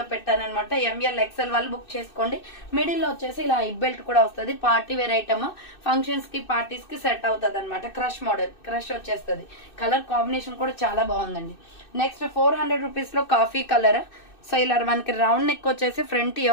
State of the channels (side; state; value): right; late; 2.6 ms